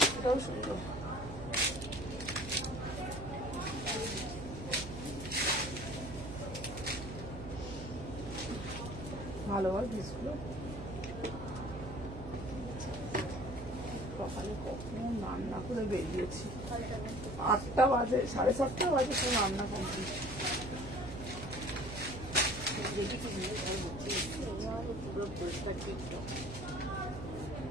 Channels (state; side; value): noise; right; hum, 10 dB below the sound